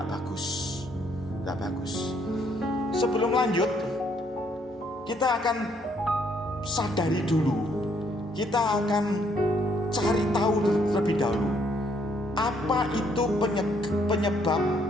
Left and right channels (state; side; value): normal; both; correlation 0.69